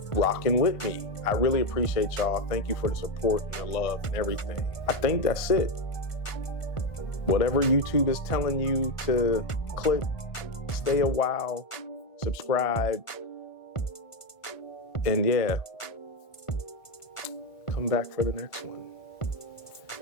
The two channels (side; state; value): right; late; 1.5 ms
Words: rocking with me. I really appreciate y'all. Thank you for the support and the love and everything. I think that's it. Whatever YouTube is telling you to click, stay a while, subscribe, and yeah, come back for the next one.